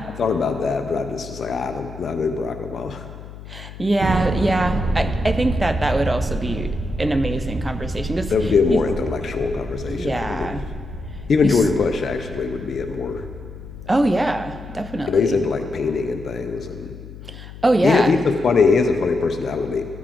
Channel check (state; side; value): noise; left; hum, 15 dB below the sound